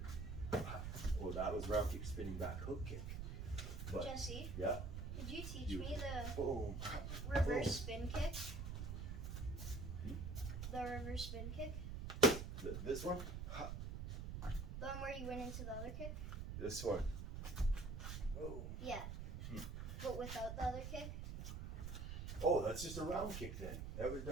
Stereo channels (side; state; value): right; noise; rumble, 5 dB below the sound